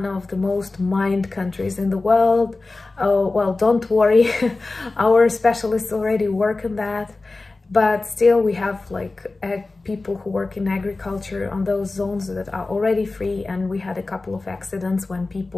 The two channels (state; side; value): quieter; right; 3.4 dB